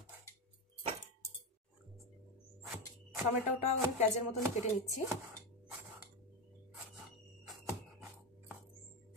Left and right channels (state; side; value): normal; both; correlation 0.14